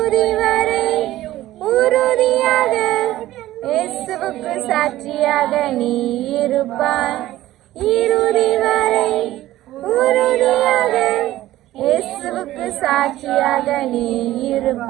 வரை உறுதியாக இயேசுவுக்கு சாட்சியாக நீ இருப்பாய் இறுதி வரை உறுதியாக இயேசுவுக்கு சாட்சியாக நீ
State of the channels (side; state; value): left; quieter; 15.2 dB